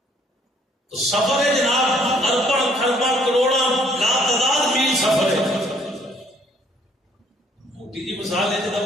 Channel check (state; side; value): normal; both; correlation 0.63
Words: تو سفر ہے جناب ارباں خرباں کروڑاں لاتعداد میل سفر ہے. موٹی جی مثال ہے